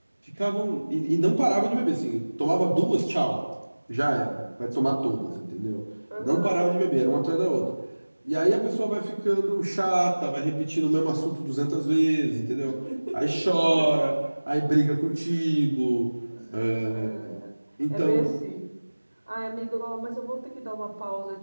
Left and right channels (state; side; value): inverted; both; correlation -1.00